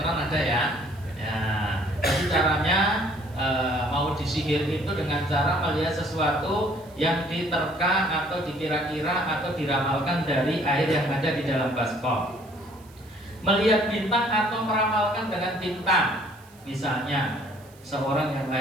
ada ya. Ya, jadi caranya mau disihir itu dengan cara melihat sesuatu yang diterka atau dikira-kira atau diramalkan dari air yang ada di dalam baskom. Melihat bintang atau meramalkan dengan bintang. Misalnya seorang yang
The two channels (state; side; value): noise; right; hiss, 27 dB below the sound